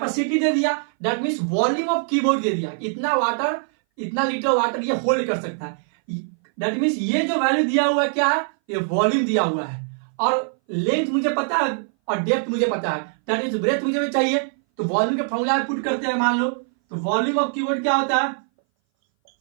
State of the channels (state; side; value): silent; left; 60 dB below the other